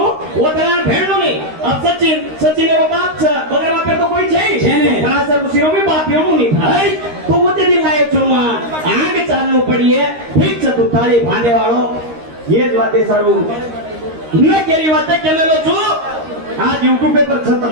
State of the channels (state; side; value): late; left; 13 ms